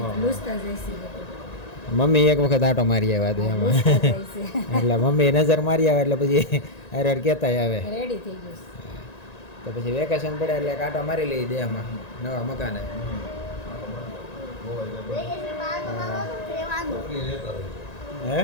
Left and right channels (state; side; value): late; right; 1.9 ms